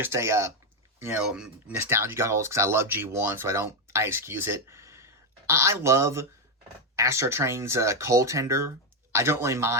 a, nostalgia goggles because I love G1, so I excuse it. I love Astro Train's coal tender. I don't really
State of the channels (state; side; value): normal; both; correlation 0.05